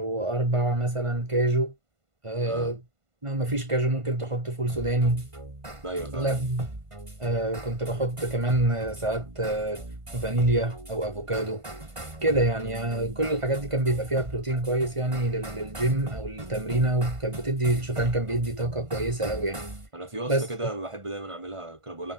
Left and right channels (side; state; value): left; late; 1.5 ms